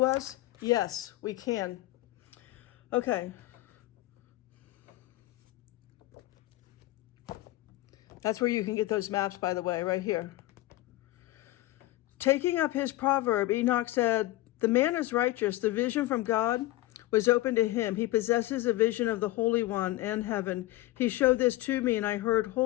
us? Yes, we can. Okay. That's where you can get those maps, by the way, right here. Taking up his proverb, Enoch said, "The man is righteous. The vision from God was open to him. He possesses a vision of the Holy One and heaven. He showed this to me, and I heard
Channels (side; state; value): right; quieter; 17.5 dB